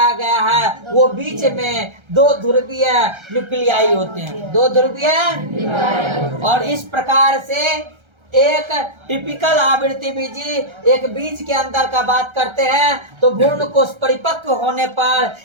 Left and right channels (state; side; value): late; left; 1.3 ms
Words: गया है, वो बीच में 2 ध्रुवीय न्यूक्लियाई होते हैं। 2 ध्रुवीय, और इस प्रकार से एक टिपिकल आवृत्ति बीजी एक बीज के अंदर का बात करते हैं, तो भ्रूण कोश परिपक्व होने पर